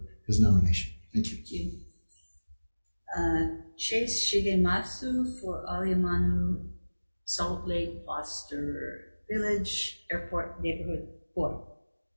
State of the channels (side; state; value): both; inverted; correlation -1.00